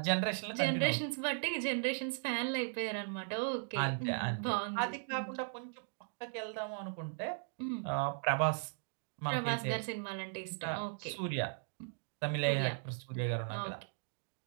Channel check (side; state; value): left; silent; digital silence